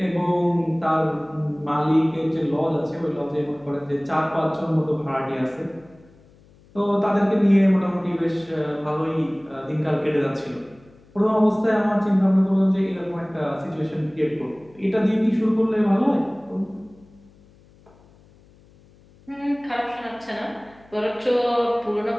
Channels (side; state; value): left; noise; hum, 28 dB below the sound